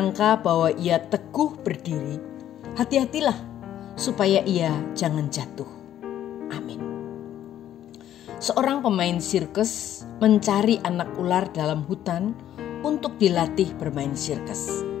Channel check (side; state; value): right; quieter; 11.4 dB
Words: bahwa ia teguh berdiri, hati-hatilah supaya ia jangan jatuh. Amin. Seorang pemain sirkus mencari anak ular dalam hutan untuk dilatih bermain sirkus.